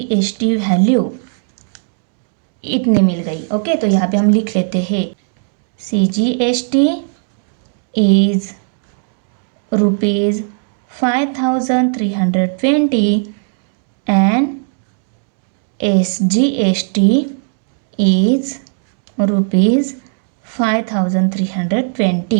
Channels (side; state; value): left; silent; 68 dB below the other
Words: value इतने मिल गई। ओके, तो यहाँ पे हम लिख लेते हैं CGST is ₹5320 and SGST is